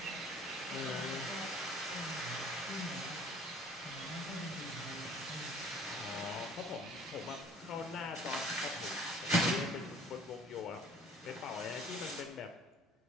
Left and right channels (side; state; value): both; normal; correlation 0.53